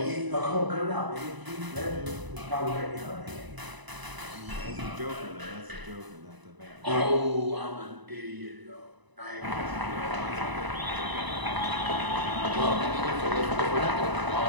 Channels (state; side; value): late; left; 1.0 ms